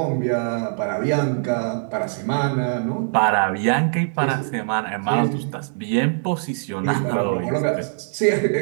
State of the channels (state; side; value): silent; left; 64 dB below the other